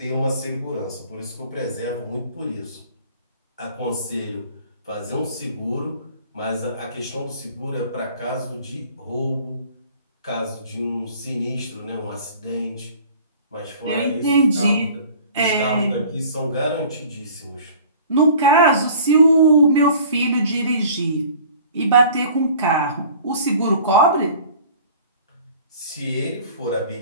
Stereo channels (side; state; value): both; inverted; correlation -0.47